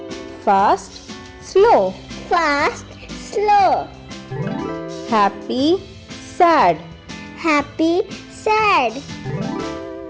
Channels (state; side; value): identical; both; correlation 1.00